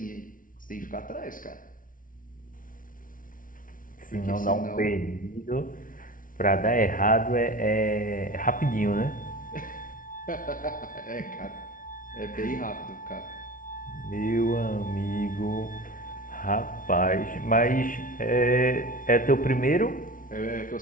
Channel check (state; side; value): late; right; 0.39 ms